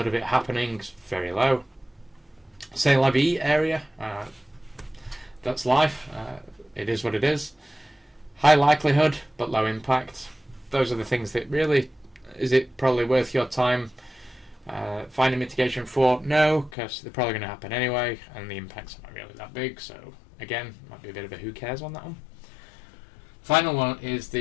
of it happening is very low. C'est la vie area, that's life, it is what it is. High likelihood but low impact. Those are the things that really, is it probably worth your time finding mitigation for? No, because they're probably going to happen anyway, and the impacts are not really that big, so again, might be a bit of a who cares on that one. Final one is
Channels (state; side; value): drops out; right; at 16.8 s